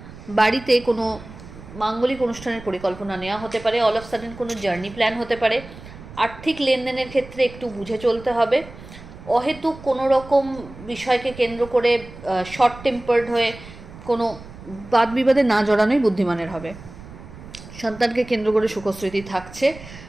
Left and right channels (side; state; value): right; noise; rumble, 17 dB below the sound